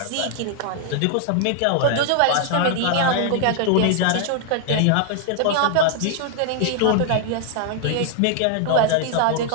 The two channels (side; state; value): both; different; correlation 0.00